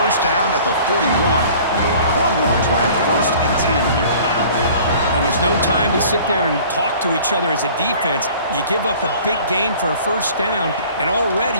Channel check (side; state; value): both; inverted; correlation -0.48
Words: down at the 41. Longhorns will have first and 10 here. And there's no time to sit there and talk to each other as a defense. You give up a big gain for a first down, and already